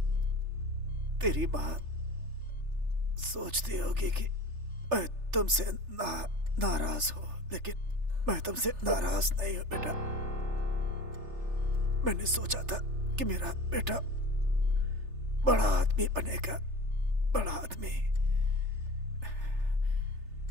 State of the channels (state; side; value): late; left; 3.3 ms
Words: तेरी माँ सोचती होगी कि मैं तुमसे नाराज हूं, लेकिन मैं तुमसे नाराज नहीं हूं बेटा। मैंने सोचा था कि मेरा बेटा बड़ा आदमी बनेगा, बड़ा आदमी।